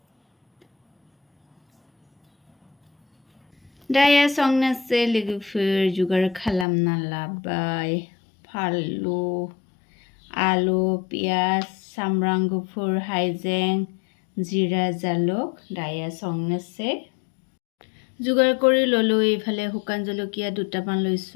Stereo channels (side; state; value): right; drops out; at 6.7 s